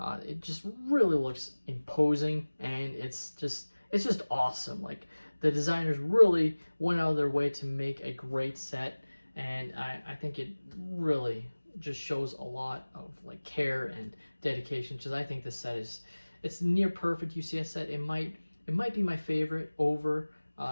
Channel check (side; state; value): both; inverted; correlation -1.00